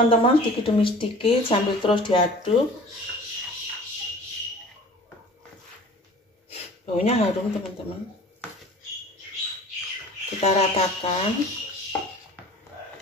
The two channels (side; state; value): both; normal; correlation 0.44